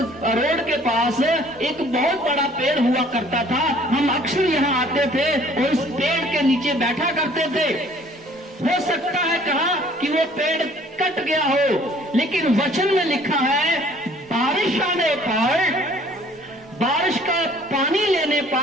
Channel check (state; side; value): normal; both; correlation 0.56